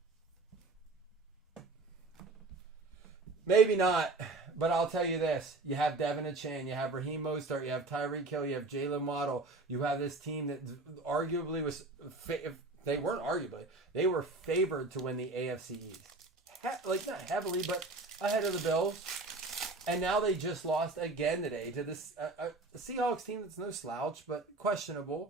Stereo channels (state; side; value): quieter; left; 3.3 dB